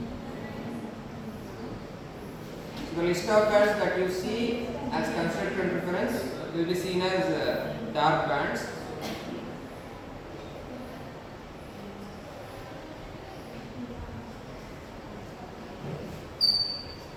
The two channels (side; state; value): both; identical; correlation 1.00